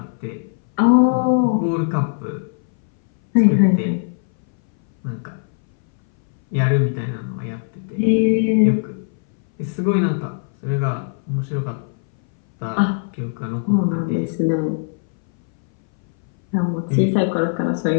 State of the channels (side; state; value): right; silent; 62 dB below the other